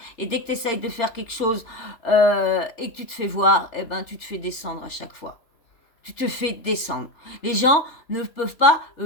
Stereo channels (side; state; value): right; late; 3.4 ms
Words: et dès que tu essayes de faire quelque chose et que tu te fais voir, tu te fais descendre à chaque fois. Tu te fais descendre. Les gens ne peuvent pas